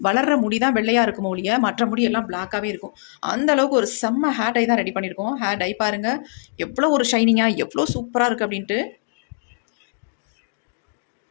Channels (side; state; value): right; silent; digital silence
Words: வளர்கிற முடி தான் வெள்ளையாக இருக்கும் ஒழிய மற்ற முடியெல்லாம் பிளாக்காகவே இருக்கும். அந்த அளவுக்கு ஒரு செம்ம ஹேர் டை தான் ரெடி பண்ணியிருக்கோம். ஹேர் டை பாருங்கள் எவ்வளோ ஒரு ஷைனிங்காக எவ்வளோ சூப்பராக இருக்குது அப்படின்ட்டு.